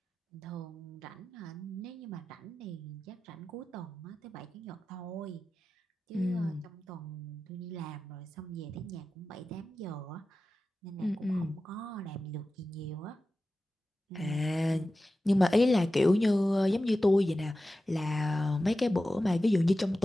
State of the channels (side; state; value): both; normal; correlation 0.94